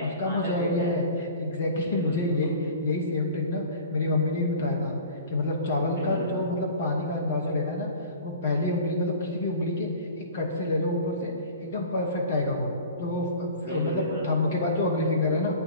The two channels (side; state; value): both; inverted; correlation -0.41